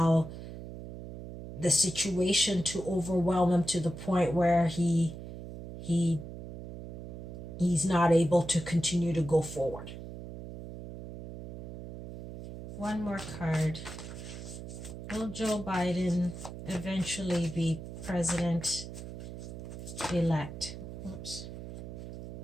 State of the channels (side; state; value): right; noise; hum, 11 dB below the sound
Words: the situation to overwhelm him to the point where he's not able to continue to go forward. One more card. Will Joe Biden eventually be president-elect?